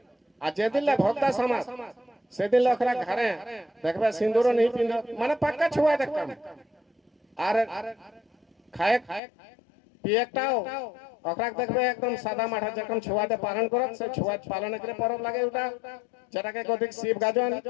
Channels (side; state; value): right; drops out; at 9.2 s